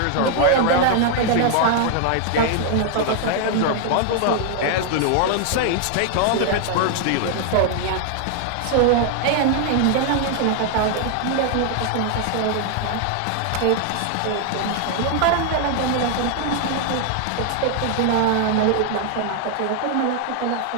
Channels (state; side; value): different; both; correlation 0.00